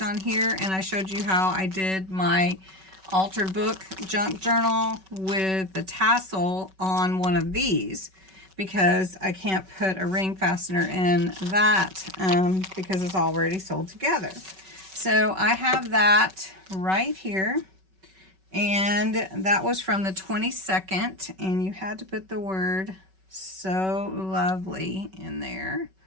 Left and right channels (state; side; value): late; left; 5.3 ms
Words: on here, and I showed you how I did my altered book junk journal with the tassel on one of these, because I can't put a ring fastener in that because it's already sold together. So I have that right here, and that was from the 22nd, and you had to put the word So Lovely in there.